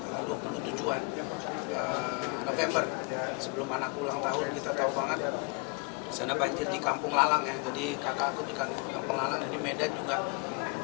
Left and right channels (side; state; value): right; quieter; 31.2 dB